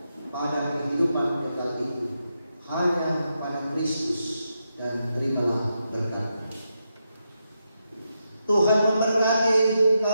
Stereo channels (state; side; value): inverted; both; correlation -0.85